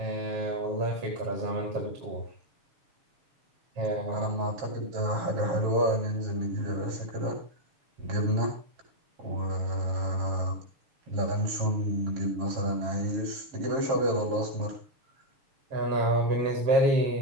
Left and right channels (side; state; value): left; late; 7.3 ms